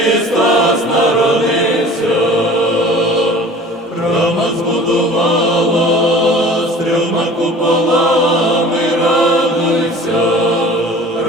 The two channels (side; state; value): both; normal; correlation 0.44